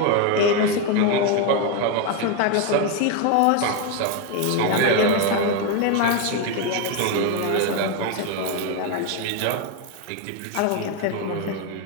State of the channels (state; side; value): different; both; correlation 0.02